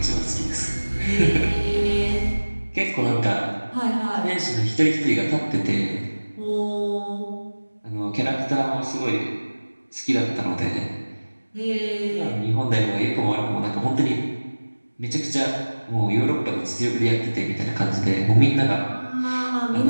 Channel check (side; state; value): both; inverted; correlation -1.00